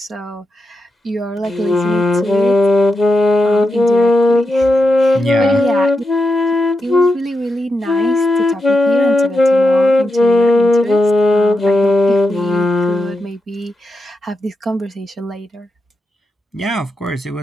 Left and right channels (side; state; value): both; normal; correlation 0.87